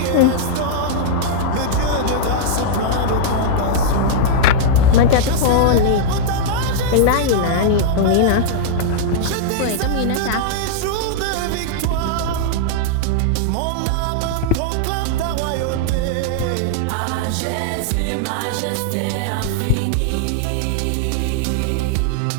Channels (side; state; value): both; different; correlation -0.01